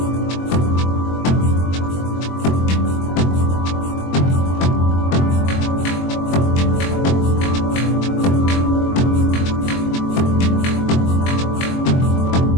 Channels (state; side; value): late; right; 22 ms